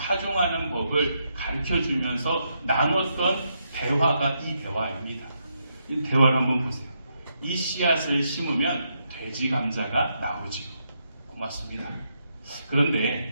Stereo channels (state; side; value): inverted; both; correlation -0.80